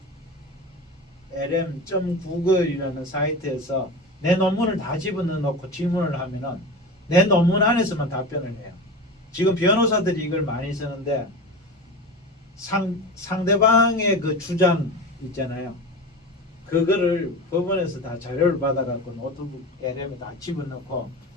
lm.google.이라는 사이트에서 내 논문을 다 집어넣어 놓고 질문을 하면은 내 논문 안에서만 답변을 해요. 지금 변호사들이 이걸 많이 쓰는데 상대방의 그 주장 있잖아요. 그거를 법원에서 다 자료를 받아갖고 노트북 LM에 다 집어넣고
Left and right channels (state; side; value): normal; both; correlation 0.29